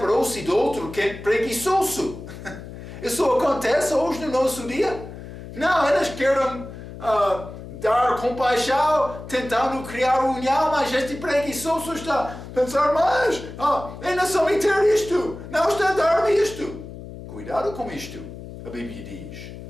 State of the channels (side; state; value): left; noise; hum, 13 dB below the sound